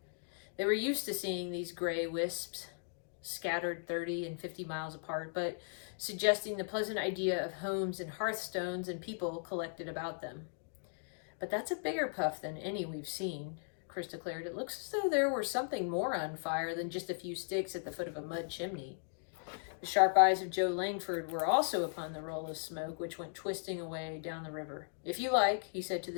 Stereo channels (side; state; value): right; silent; digital silence